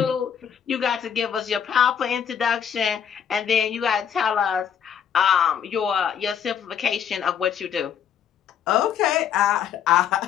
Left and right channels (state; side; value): quieter; right; 8.3 dB